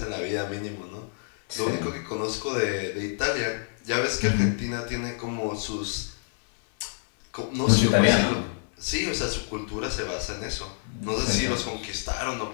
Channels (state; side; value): silent; right; digital silence